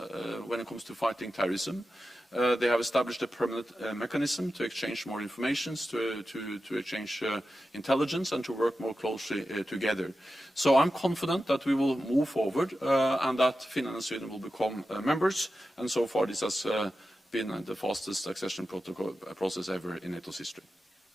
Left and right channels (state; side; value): normal; both; correlation 0.92